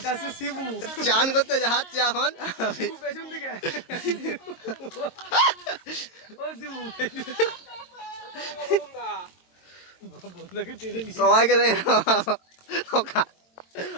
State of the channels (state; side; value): late; right; 22 ms